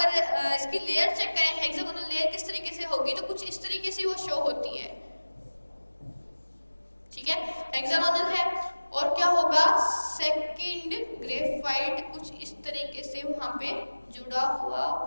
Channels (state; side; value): inverted; both; correlation -1.00